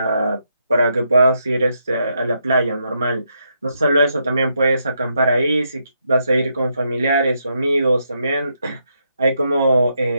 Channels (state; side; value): inverted; both; correlation -0.79